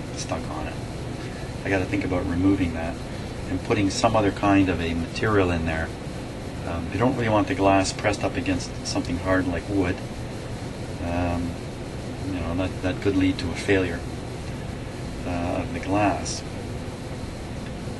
stuck on it. I got to think about removing that and putting some other kind of a material in there. You don't really want the glass pressed up against something hard like wood. You know, that could lead to a failure of the glass.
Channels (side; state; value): both; identical; correlation 1.00